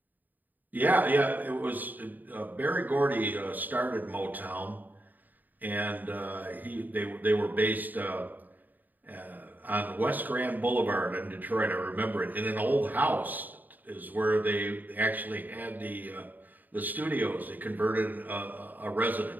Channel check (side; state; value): left; late; 0.086 ms